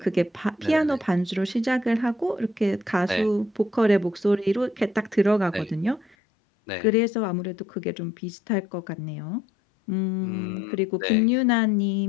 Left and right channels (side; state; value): right; drops out; at 6.2 s